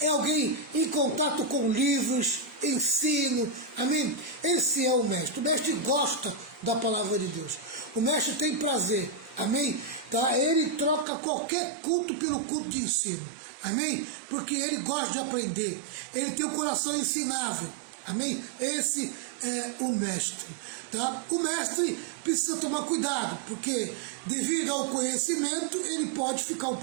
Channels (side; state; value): left; drops out; at 11.1 s